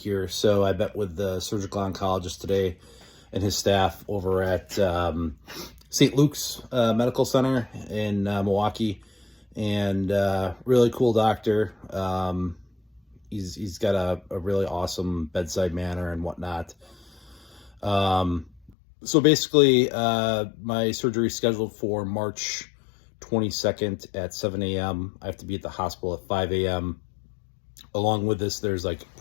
So I met with the surgical oncologist today and his staff over at St. Luke's Medical Center in Milwaukee, and really cool doctor. He's got a really awesome bedside manner and whatnot. So basically, my surgery is scheduled for March 22nd at 7 a.m. I have to be at the hospital at 5 a.m. Along with this, there's like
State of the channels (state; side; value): drops out; right; at 18.7 s